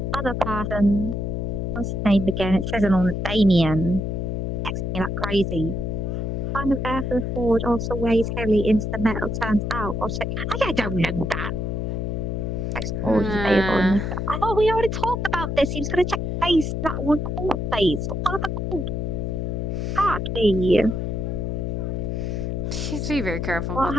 other person. What's his name again? It says it on Damien. Texting me like crazy. Kind of air for the forge also weighs heavily into the metal turns out. Or say, I don't know that. Text forge is available in the... I thought we already talked about this. He was going to check the face. That one called face. What other called? Exactly. be very careful What about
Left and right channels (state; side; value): noise; left; hum, 2 dB below the sound